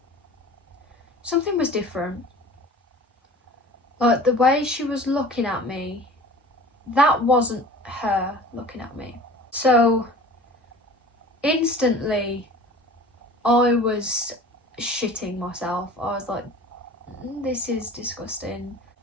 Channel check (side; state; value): both; normal; correlation 0.42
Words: something was different. Like, the way she was looking at me, that wasn't her looking at me. So instantly I was shitting myself. I was like, this is disgusting.